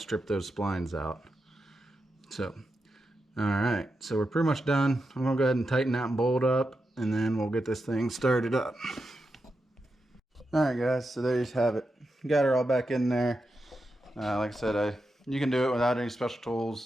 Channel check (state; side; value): normal; both; correlation 0.88